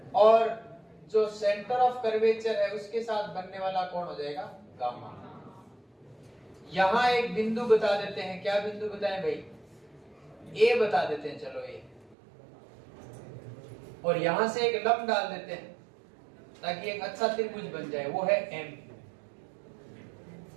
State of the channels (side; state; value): left; drops out; at 12.2 s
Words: और जो सेंटर ऑफ कर्वेचर है उसके साथ बनने वाला कोण हो जाएगा गामा। यहां एक बिंदु बता देते हैं। क्या बिंदु बताएं भाई? ए बता देते हैं। चलो और यहां से एक लंब डाल देते हैं ताकि एक अच्छा त्रिभुज बन जाए, वो है एम।